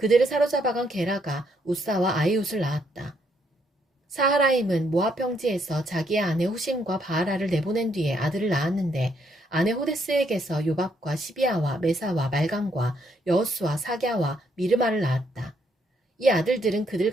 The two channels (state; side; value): normal; both; correlation 0.73